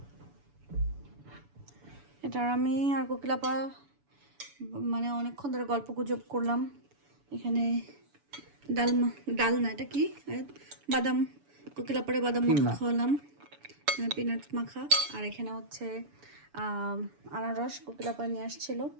এটার আমি আর কোকিলাপা মানে অনেকক্ষণ ধরে গল্প গুজব করলাম। এখানে ডাল না, এটা কি বাদাম, কোকিলাপারে বাদাম মাখা খাওয়ালাম, পিনাট মাখা। আর এখানে হচ্ছে আনারস কোকিলাপা নিয়ে আসছিল।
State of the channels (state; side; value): late; left; 7.0 ms